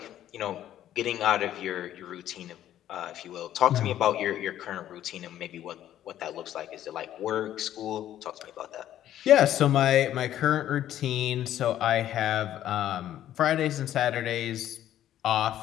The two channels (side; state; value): right; quieter; 12.0 dB